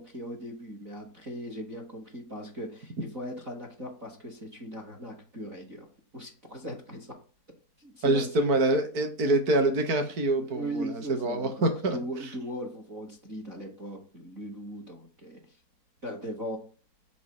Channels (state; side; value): late; left; 4.5 ms